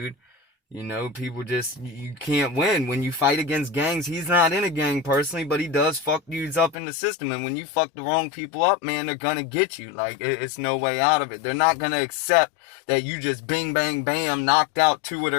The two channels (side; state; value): right; drops out; at 6.8 s